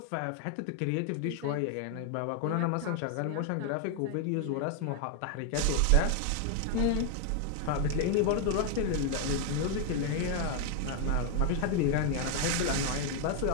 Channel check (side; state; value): both; different; correlation 0.00